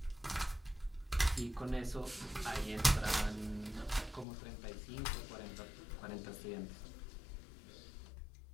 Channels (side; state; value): right; drops out; at 4.2 s